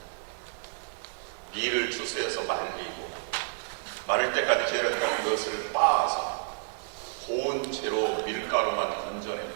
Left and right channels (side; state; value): left; silent; digital silence